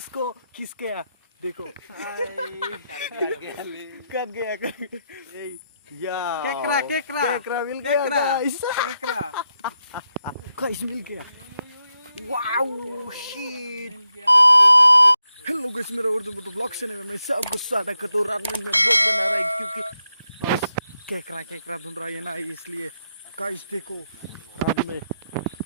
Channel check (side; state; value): both; inverted; correlation -0.85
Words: किस गया देखो, कट गया या केकरा मिल गया गाइस, गाइस मिल गया, वाओ शिट। हेलो गाइस, मेरा उर्दू में ब्लॉग चैनल में मैं सबको स्वागत करता हूँ। रात में मैं ब्लॉग बना रहा हूँ क्योंकि बस केकरा ढूंढ रहा है ना, इसलिए गाइस देखो रात में